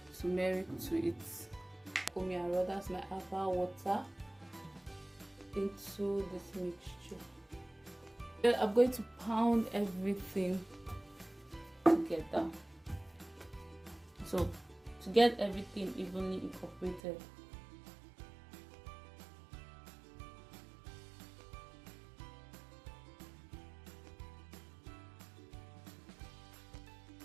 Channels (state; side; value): drops out; left; at 17.0 s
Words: turmeric to it. That's my herbal water into this mixture. Then I'm going to pound everything together, so to get everything evenly incorporated.